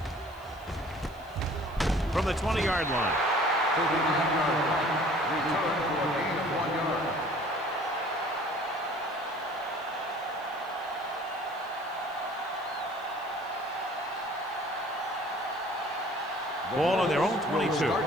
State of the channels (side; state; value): left; noise; hiss, 27 dB below the sound